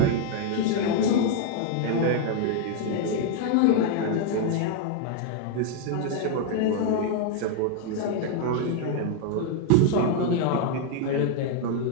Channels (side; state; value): both; different; correlation 0.00